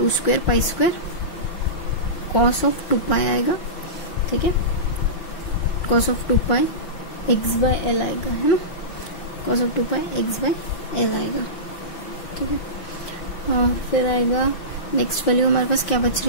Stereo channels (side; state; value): right; late; 5.6 ms